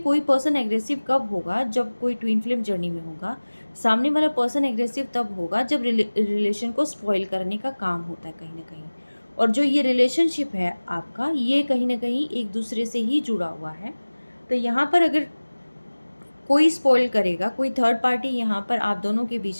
पर्सन एग्रेसिव कब होगा, जब कोई ट्विन फ्लेम जर्नी में होगा। सामने वाला पर्सन एग्रेसिव तब होगा जब रिलेशन को स्पॉइल करने का काम होता है कहीं न कहीं। और जो ये रिलेशनशिप है आपका, ये कहीं न कहीं एक दूसरे से ही जुड़ा हुआ है। तो यहाँ पर अगर कोई स्पॉइल करेगा, कोई थर्ड पार्टी यहाँ पर आप दोनों के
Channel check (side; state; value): both; inverted; correlation -1.00